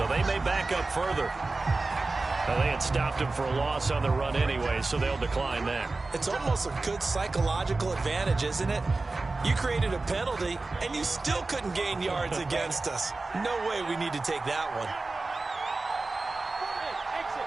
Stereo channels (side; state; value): left; quieter; 3.4 dB